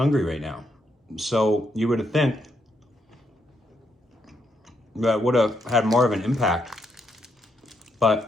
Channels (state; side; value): normal; both; correlation 0.78